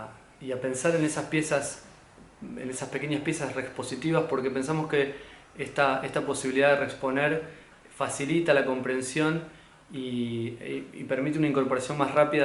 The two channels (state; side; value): identical; both; correlation 1.00